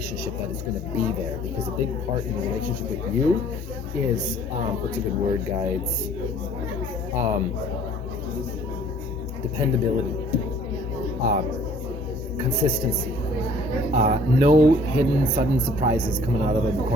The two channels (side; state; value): both; normal; correlation 0.55